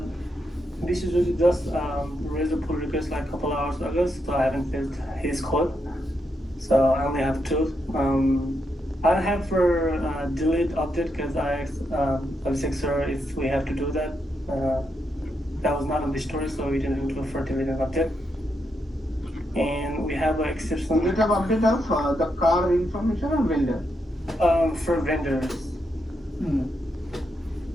this is really just raise a pull request like a couple hours ago, so I haven't filled his code. So I only have 2. I have for delete update because I asked sir if we have to do that. That was not on the story, so we didn't do it for delete and update. And we have an exception. Do you have update of the car information or vendor? For vendors.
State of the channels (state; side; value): normal; both; correlation 0.82